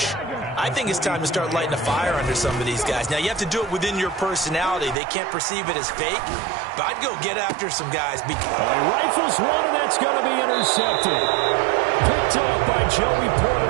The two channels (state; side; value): drops out; left; at 5.0 s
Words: I think it's time to start lighting a fire under some of these guys. Now, you have to do it within your personality. They can't perceive it as fake, but I'd go get after some guys. He rifles one, and that's going to be intercepted. Picked off by Joey